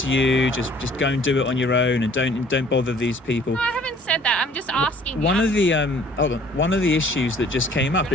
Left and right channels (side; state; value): both; normal; correlation 0.55